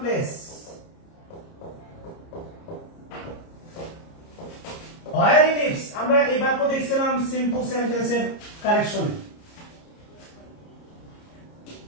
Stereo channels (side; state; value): right; late; 30 ms